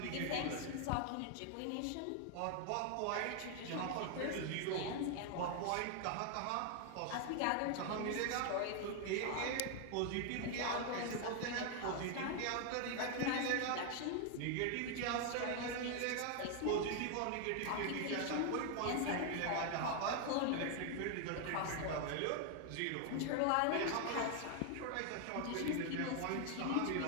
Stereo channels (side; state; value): both; different; correlation 0.00